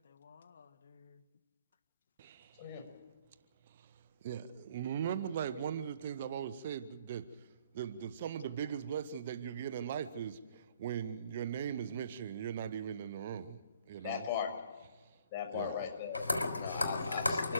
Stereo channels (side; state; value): both; inverted; correlation -0.62